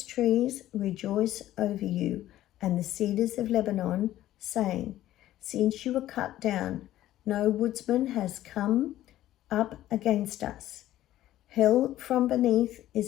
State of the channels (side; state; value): right; quieter; 13.9 dB